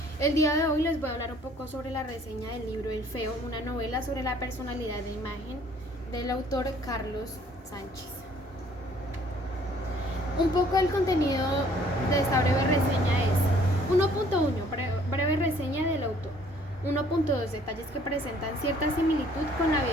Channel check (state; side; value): normal; both; correlation 0.59